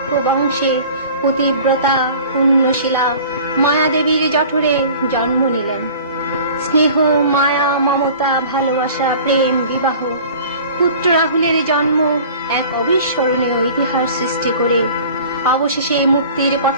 বংশে পতিব্রতা পুণ্যশীলা মায়াদেবীর জঠরে জন্ম নিলেন। স্নেহ, মায়া, মমতা, ভালোবাসা, প্রেম, বিবাহ, পুত্র রাহুলের জন্ম এক অবিস্মরণীয় ইতিহাস সৃষ্টি করে অবশেষে মুক্তির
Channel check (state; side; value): inverted; both; correlation -0.45